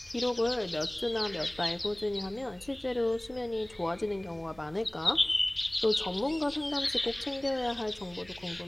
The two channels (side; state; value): right; noise; rumble, 25 dB below the sound